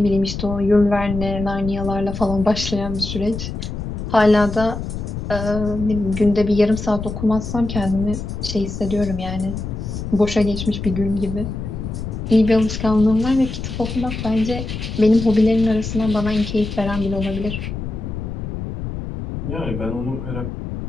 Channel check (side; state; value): left; noise; rumble, 6 dB below the sound